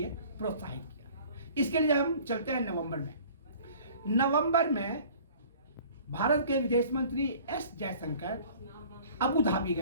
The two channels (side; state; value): both; inverted; correlation -0.49